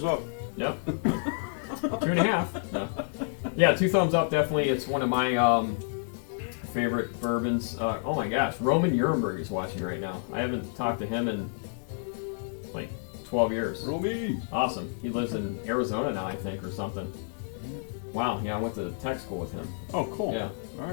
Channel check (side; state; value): right; silent; digital silence